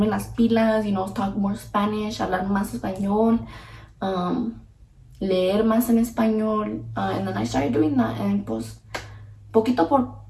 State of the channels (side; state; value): both; identical; correlation 1.00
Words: las pilas, you know, talk more Spanish, hablar más español, leer más en español, and then I started doing that, and pues poquito